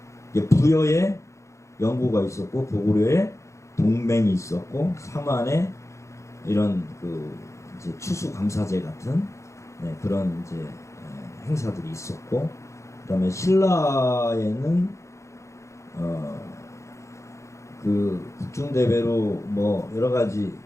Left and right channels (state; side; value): late; right; 0.14 ms